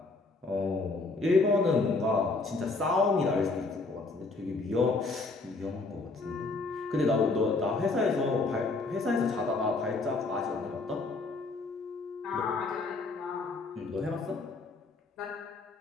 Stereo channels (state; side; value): quieter; right; 3.6 dB